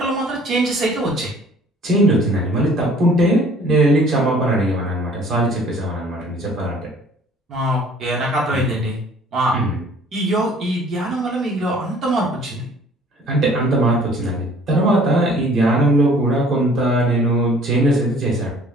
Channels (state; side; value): normal; both; correlation 0.54